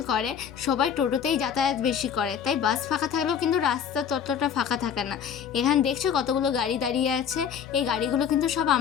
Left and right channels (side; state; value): right; quieter; 7.9 dB